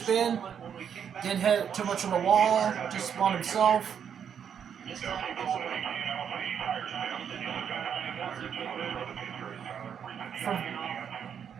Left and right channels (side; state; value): left; quieter; 8.0 dB